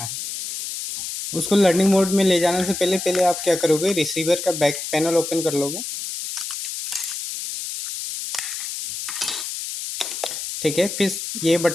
है। उसको लर्निंग मोड में ले जाने से पहले आप क्या करोगे, रिसीवर का बैक पैनल ओपन कर लोगे। ठीक है, फिर ये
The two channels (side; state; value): left; noise; hiss, 6 dB below the sound